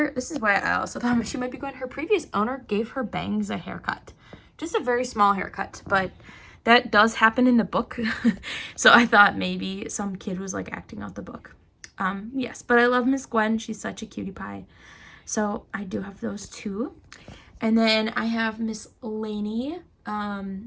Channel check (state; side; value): identical; both; correlation 1.00